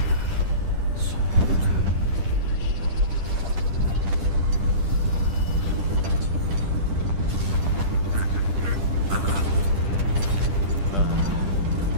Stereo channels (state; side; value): late; left; 10 ms